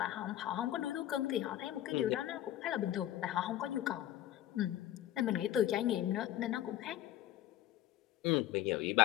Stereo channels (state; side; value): quieter; right; 13.0 dB